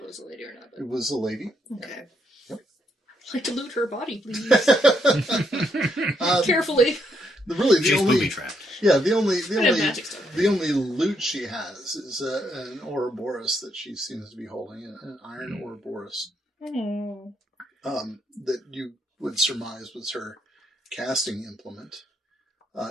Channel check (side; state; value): both; normal; correlation 0.76